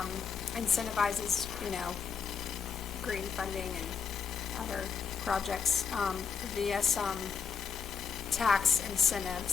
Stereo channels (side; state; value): right; quieter; 6.3 dB